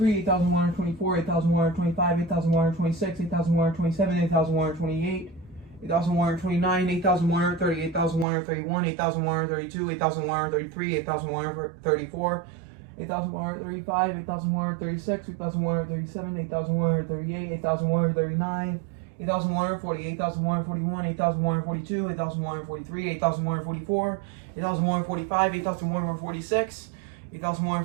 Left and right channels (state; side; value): drops out; left; at 8.2 s